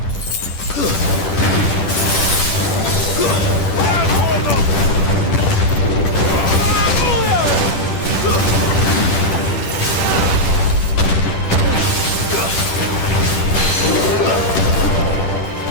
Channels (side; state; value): right; late; 10 ms